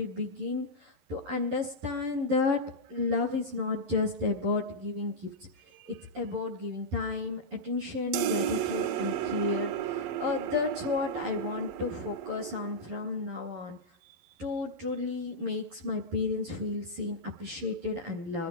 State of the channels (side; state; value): left; late; 11 ms